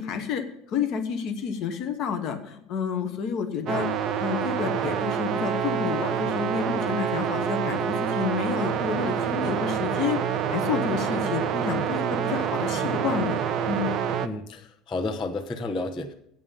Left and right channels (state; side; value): normal; both; correlation 0.37